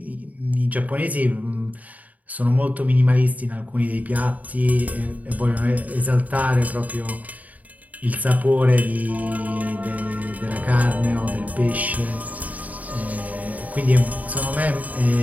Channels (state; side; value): late; left; 0.073 ms